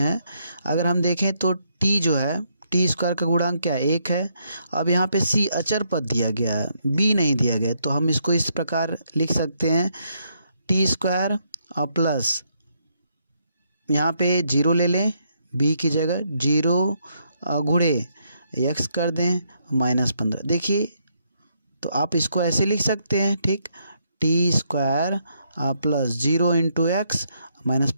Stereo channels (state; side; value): inverted; both; correlation -0.75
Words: अगर हम देखें तो t जो है t² का गुणांक क्या है 1 है। अब यहाँ पे c अचर पद दिया गया है, b नहीं दिया गया, तो हम इसको इस प्रकार लिख सकते हैं t² और प्लस यहाँ पे 0 ले लें b की जगह, 0 गुणे x कर दें -15। देखिए तो आप इसको ऐसे लिख सकते हैं। ठीक, t² प्लस 0 इंटू x